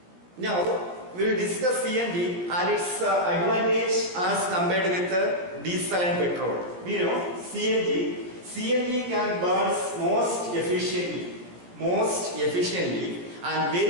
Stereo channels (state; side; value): late; left; 17 ms